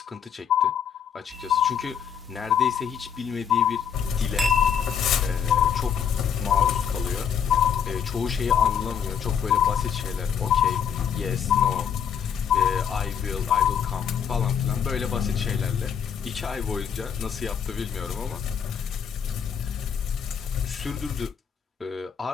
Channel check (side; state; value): right; quieter; 7.8 dB